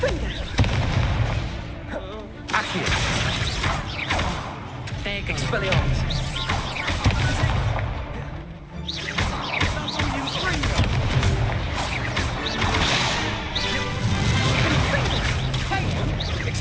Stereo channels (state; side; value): identical; both; correlation 1.00